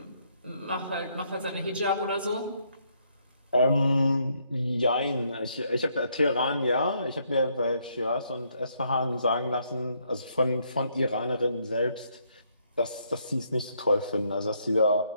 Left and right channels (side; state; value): both; inverted; correlation -0.72